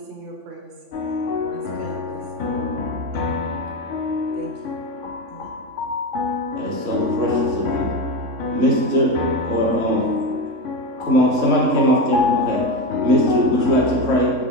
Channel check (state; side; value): late; left; 3.6 ms